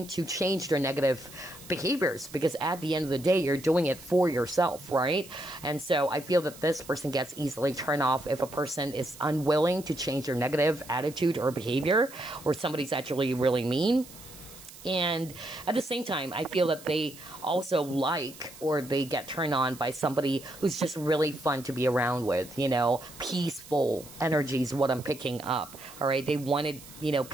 to change their negative behaviors, because at the end of the day, you're doing it for yourself, right? And so I feel that this person gets easily turned off if a person is unwilling to change their negative attitude or behavior, or somebody's actually really mean. And at the same time, I feel that they also like, or they get turned on by somebody who's just really fun to be around with, you know, peaceful energy is what I'm picking up, all right? They wanted, you know,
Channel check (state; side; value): noise; right; hiss, 18 dB below the sound